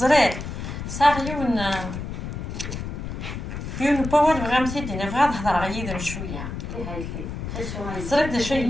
صار يون باور بغا مسيدين بغا نهضر غير شويه زرير دا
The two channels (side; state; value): left; noise; rumble, 6 dB below the sound